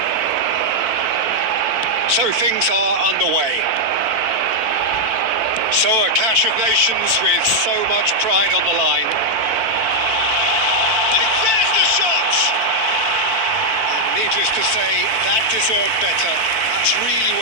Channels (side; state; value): left; late; 4.5 ms